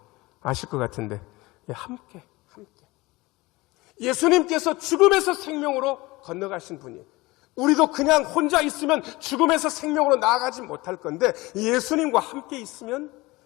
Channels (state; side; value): quieter; right; 21.5 dB